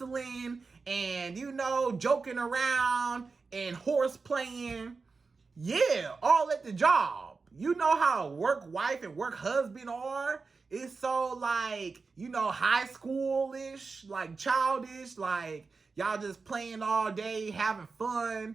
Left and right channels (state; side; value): quieter; left; 4.4 dB